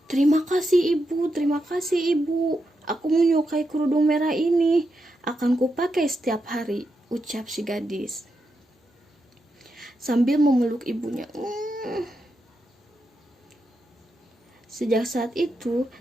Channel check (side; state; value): both; normal; correlation 0.85